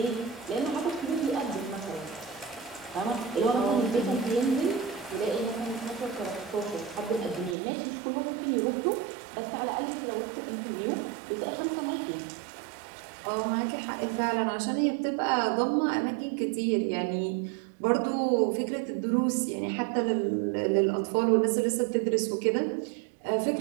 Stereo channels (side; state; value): left; drops out; at 7.6 s